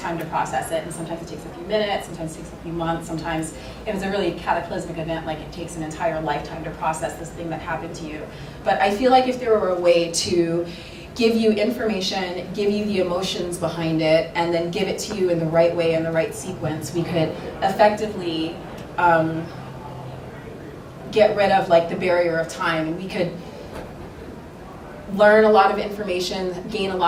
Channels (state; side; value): identical; both; correlation 1.00